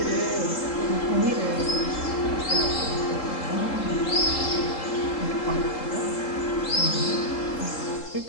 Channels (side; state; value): right; late; 3.7 ms